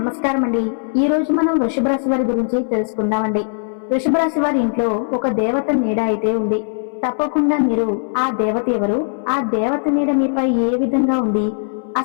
అండి. ఈ రోజు మనం వృషభ రాశి వారి గురించి తెలుసుకుందామండి. వృషభ రాశి వారి ఇంట్లో ఒక దేవత నీడ అయితే ఉంది. తప్పకుండా మీరు ఆ దేవత ఎవరు, ఆ దేవత నీడ మీపై ఏ విధంగా ఉంది,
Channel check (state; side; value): silent; right; 64 dB below the other